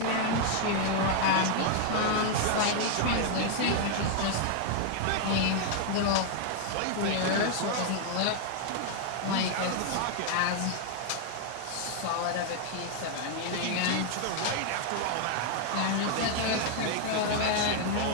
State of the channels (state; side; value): different; both; correlation 0.00